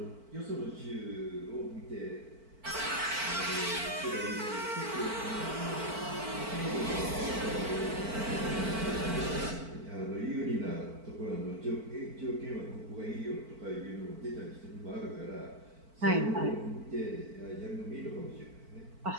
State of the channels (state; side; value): late; left; 4.5 ms